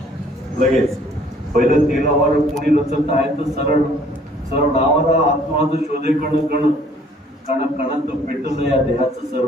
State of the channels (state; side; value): normal; both; correlation 0.58